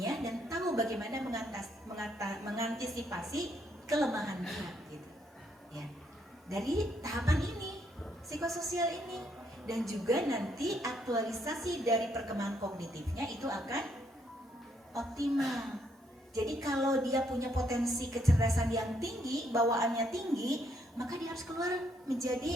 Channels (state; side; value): normal; both; correlation 0.72